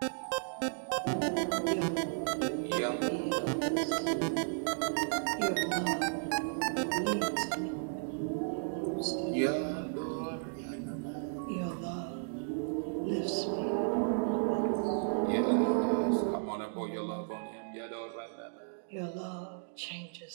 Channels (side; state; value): left; silent; digital silence